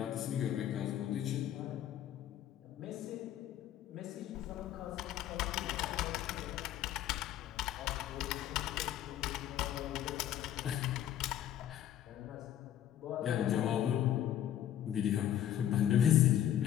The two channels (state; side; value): quieter; right; 11.3 dB